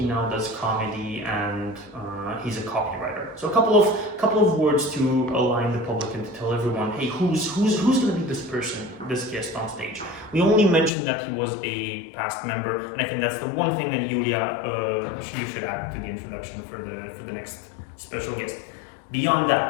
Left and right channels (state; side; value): drops out; right; at 10.9 s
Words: now does comedy, and he's a copywriter. So a couple of words to align the public and to tell everyone, hey, who's going to be this person, this guest on stage? We only mentioned that he was a past member, and I think that's the one thing that Julia, you should add to the introduction for the next special guest. Beyond